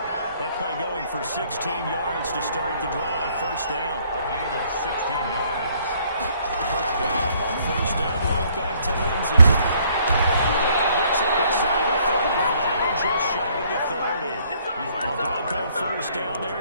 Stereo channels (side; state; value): both; inverted; correlation -0.64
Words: That play going for 16 yards to start the drive. First down. A gain of 16 yards. First down. First down, right back to Lindsey. And he gets it inside the 35 and just shy of the 30. A Bronco first down